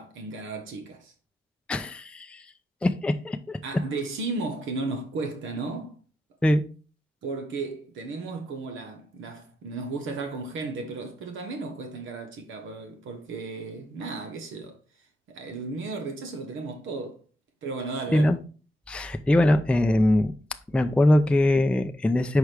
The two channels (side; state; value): both; normal; correlation 0.86